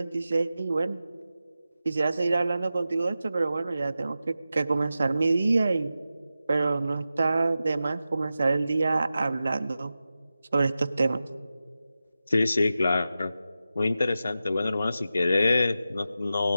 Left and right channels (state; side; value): inverted; both; correlation -0.92